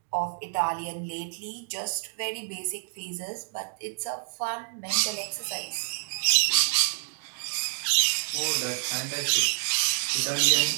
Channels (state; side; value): silent; left; digital silence